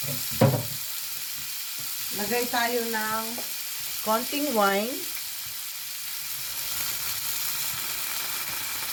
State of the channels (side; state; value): both; identical; correlation 1.00